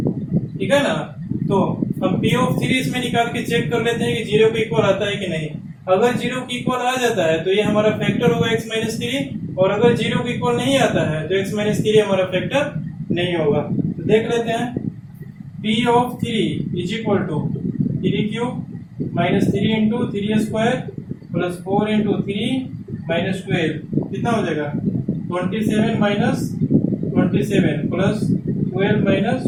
ठीक है ना। तो अब p ऑफ 3 इसमें निकाल के चेक कर लेते हैं कि 0 के इक्वल आता है कि नहीं। अगर 0 के इक्वल आ जाता है तो ये हमारा फैक्टर होगा x माइनस 3, और अगर 0 के इक्वल नहीं आता है तो x माइनस 3 हमारा फैक्टर नहीं होगा। तो देख लेते हैं, p of 3 is equal to 3 cube minus 3 into 3 square plus 4 into 3 minus 12 कितना हो जाएगा, 27 minus 27 plus 12 minus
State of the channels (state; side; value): identical; both; correlation 1.00